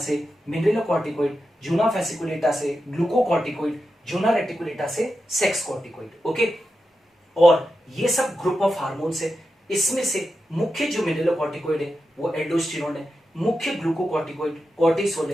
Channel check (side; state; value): both; normal; correlation 0.89